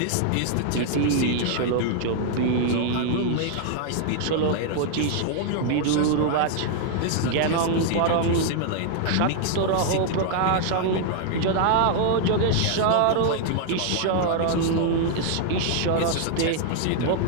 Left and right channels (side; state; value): both; different; correlation 0.00